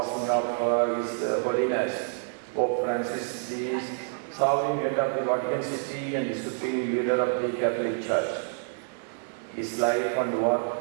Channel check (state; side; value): silent; left; digital silence